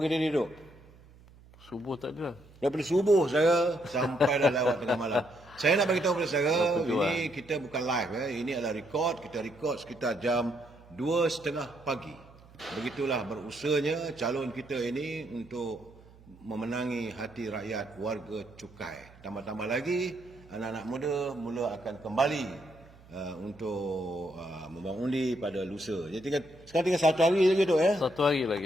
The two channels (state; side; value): noise; right; hum, 24 dB below the sound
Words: ni, Duk? Subuh tak ada. Daripada subuh saya sampai dah lewat tengah malam. Saya nak bagi tahu kepada saudara, ini kita bukan live. Ini adalah record. Kita record sekitar jam 2:30 pagi. Begitulah berusahanya calon kita ini untuk memenangi hati rakyat warga cukai. Tambah-tambah lagi, anak-anak muda mula akan kembali untuk membuang undi pada lusa. Jadi sekarang tinggal 1 hari lagi, Datuk, ya? 1 hari